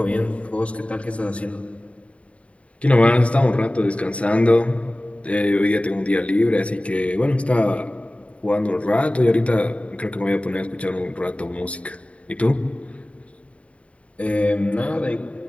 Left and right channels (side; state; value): right; late; 0.064 ms